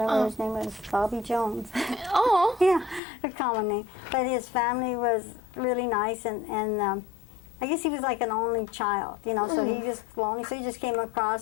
his name was Bobby Jones. Oh. Yeah, a common name. But his family was really nice, and I guess he was like an only child, you know, so he just lonely. So he just came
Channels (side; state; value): right; drops out; at 3.0 s